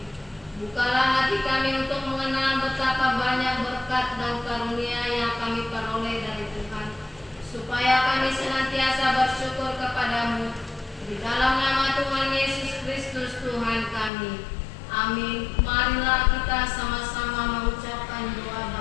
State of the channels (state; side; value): drops out; right; at 14.1 s